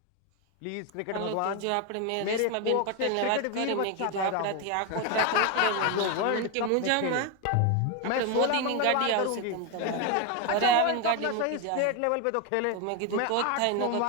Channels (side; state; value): both; different; correlation 0.01